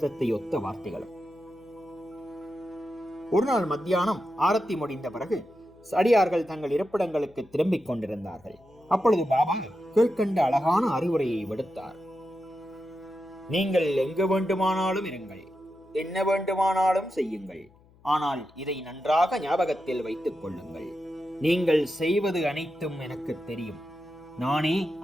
ஒத்த வார்த்தைகளும். ஒரு நாள் மத்தியானம் ஆரத்தி முடிந்த பிறகு அடியார்கள் தங்கள் இருப்பிடங்களுக்கு திரும்பிக் கொண்டிருந்தார்கள். அப்பொழுது பாபா கீழ்கண்ட அழகான அறிவுரையை விடுத்தார். நீங்கள் எங்கு வேண்டுமானாலும் இருங்கள், என்ன வேண்டுமானாலும் செய்யுங்கள். ஆனால் இதை நன்றாக ஞாபகத்தில் வைத்துக் கொள்ளுங்கள். நீங்கள் செய்வது அனைத்தும் எனக்கு தெரியும். நானே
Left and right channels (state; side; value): noise; left; hum, 28 dB below the sound